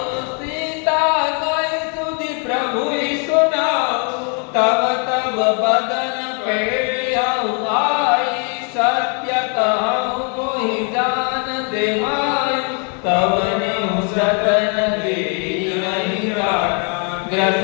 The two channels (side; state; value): right; quieter; 38.7 dB